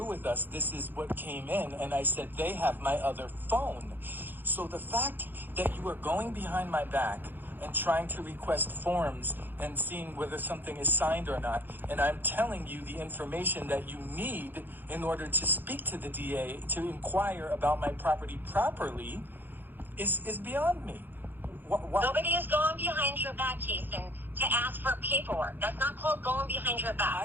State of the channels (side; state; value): left; late; 0.091 ms